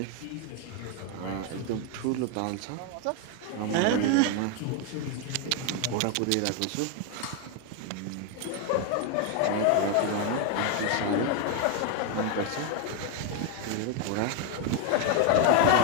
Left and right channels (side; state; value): both; different; correlation 0.01